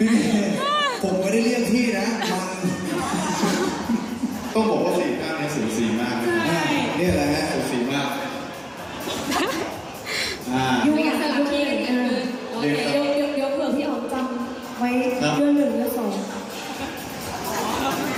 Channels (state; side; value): identical; both; correlation 1.00